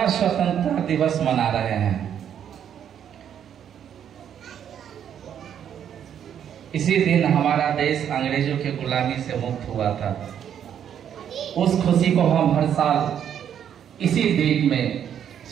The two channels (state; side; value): quieter; left; 9.2 dB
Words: स्वतंत्रता दिवस मना रहे हैं। इसी दिन हमारा देश अंग्रेजों की गुलामी से मुक्त हुआ था। उस खुशी को हम हर साल इसी डेट में